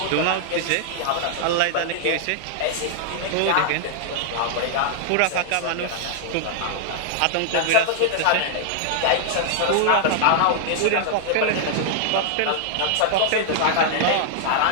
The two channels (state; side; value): different; both; correlation -0.01